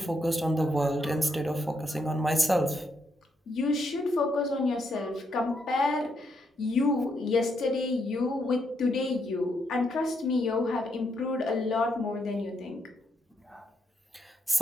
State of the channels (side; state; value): both; normal; correlation 0.78